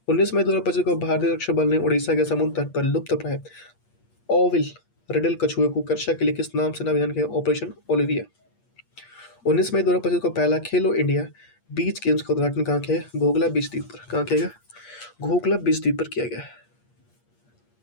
19 मई 2025 को भारतीय रक्षा बल ने उड़ीसा के समुद्र तट पर लुप्तप्राय ऑविल रेडल कछुए को रक्षा के लिए किस नाम से नामकरण किया? Operation Olivia. 19 मई 2025 को पहला खेलो इंडिया बीच गेम्स का उद्घाटन कहाँ किया गया? घोघला बीच द्वीप पर। कहाँ किया गया? घोघला बीच द्वीप पर किया गया।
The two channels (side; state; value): right; late; 8.5 ms